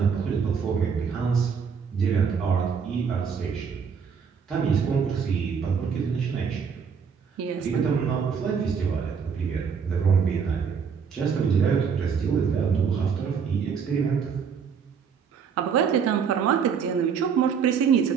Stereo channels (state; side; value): quieter; left; 6.5 dB